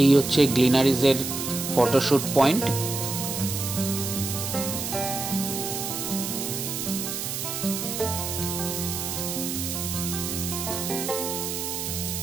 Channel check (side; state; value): right; noise; hiss, 4 dB below the sound